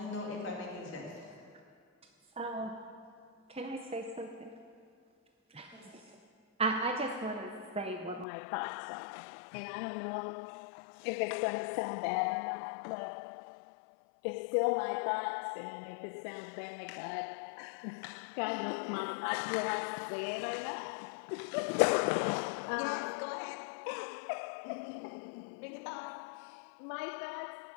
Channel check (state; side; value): drops out; right; at 8.2 s